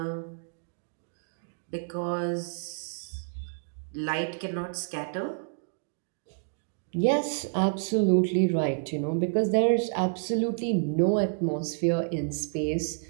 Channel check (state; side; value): silent; left; digital silence